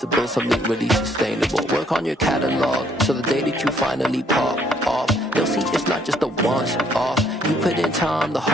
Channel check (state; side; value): normal; both; correlation 0.66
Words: build something really sustainable. Work on your catalog, so the day that you finally pop off, they'll see it's not just a once off. You put in time, the